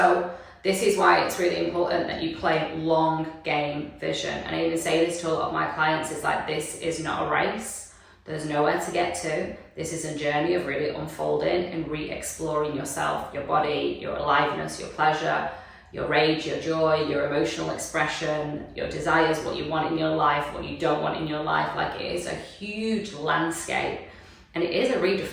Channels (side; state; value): both; identical; correlation 1.00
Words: this is why it's really important that you play long game vision. And I even say this to a lot of my clients, it's like, this is not a race. There's nowhere to get to. This is a journey of really unfolding and re-exploring yourself, your body, your aliveness, your pleasure, your rage, your joy, your emotional expression, your desires, what you want in your life, what you don't want in your life. Like, it is a huge landscape. And it is a